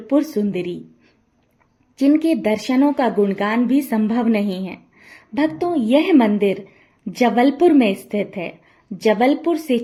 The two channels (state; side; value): identical; both; correlation 1.00